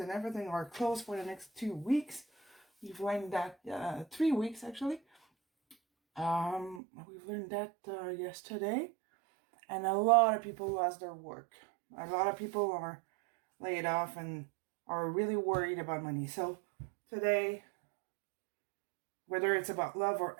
everything are closed for the next 2 weeks. We've learned that 3 weeks actually. We've learned that yesterday, and a lot of people lost their work. A lot of people are laid off and are really worried about money. So today, whether it's about love or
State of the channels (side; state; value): left; drops out; at 6.8 s